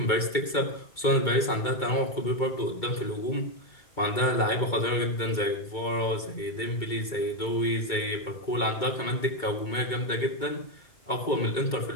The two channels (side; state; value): right; late; 2.2 ms